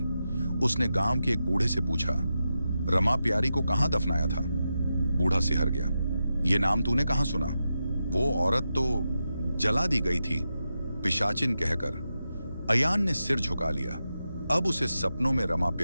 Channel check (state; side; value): inverted; both; correlation -0.89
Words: उसने गांव के एक बूढ़े से पूछा, रमा प्यारी को कहां दफनाया था? बूढ़ा सिहर गया। ये नाम तूने कहां सुना? वो औरत तो जला दी गई थी, पिशाचिन कहकर। अयान ने सिर झुका लिया। अब उसे सपनों में रमा